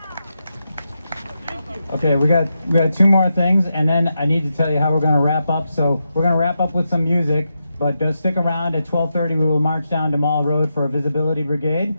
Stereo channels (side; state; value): both; inverted; correlation -0.86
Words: Okay, we got 2 more things, and then I need to tell you how we're going to wrap up. So we're going to wrap up with some music, but stick around. At 12:30 we will march down to Mall Road for a visibility brigade,